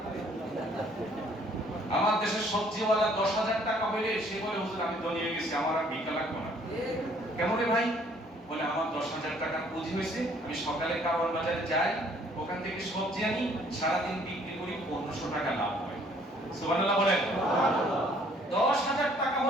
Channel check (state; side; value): normal; both; correlation 0.61